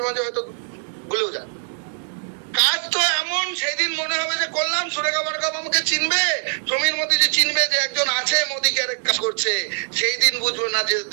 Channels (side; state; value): left; silent; 64 dB below the other